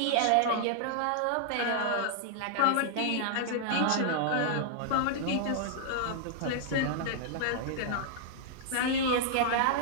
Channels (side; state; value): both; different; correlation -0.01